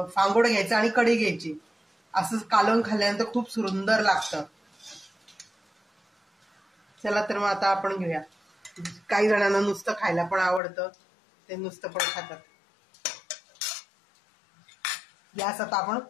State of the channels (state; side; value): drops out; right; at 10.6 s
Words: फांगोड घ्यायचं आणि कढी घ्यायची, असं कालवून खाल्ल्यानंतर खूप सुंदर लागतं. चला तर मग आता आपण घेऊया. काही जणांना नुसतं खायला पण आवडतं, ते नुसतं पण खातात. गॅस आता आपण